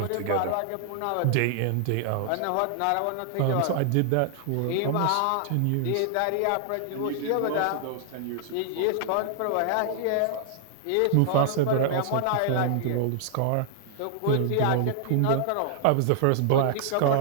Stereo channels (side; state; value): both; different; correlation -0.01